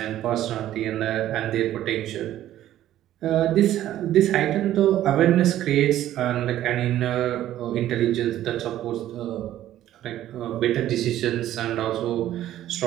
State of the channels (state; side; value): quieter; left; 12.9 dB